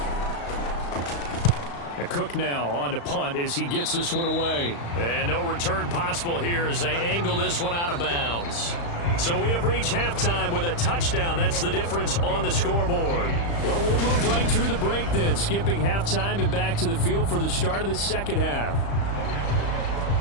Cook now on to punt as he gets this one away. And no return possible here as they angle this one out of bounds. So we have reached halftime with a touchdown. That's the difference on the scoreboard. Well, we'll move right through the break then, skipping halftime and back to the field for the start of the second half.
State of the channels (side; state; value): right; late; 35 ms